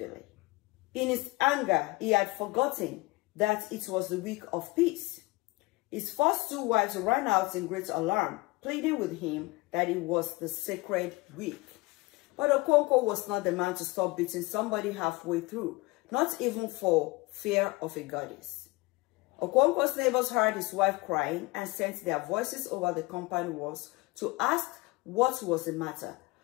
In his anger, he had forgotten that it was the week of peace. His first two wives ran out in great alarm, pleading with him that it was the sacred week. But Okonkwo was not the man to stop beating somebody halfway through, not even for fear of a goddess. Okonkwo's neighbors heard his wife crying and sent their voices over the compound walls to ask what was the matter.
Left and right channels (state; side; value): quieter; right; 23.1 dB